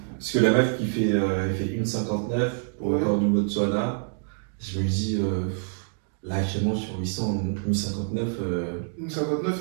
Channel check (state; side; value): silent; left; digital silence